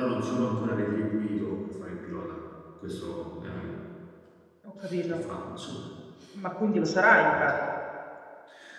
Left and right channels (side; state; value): both; identical; correlation 1.00